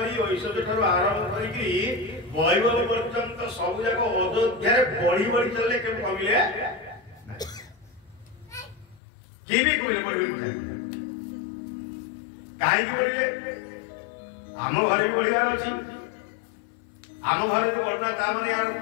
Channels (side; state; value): right; drops out; at 9.0 s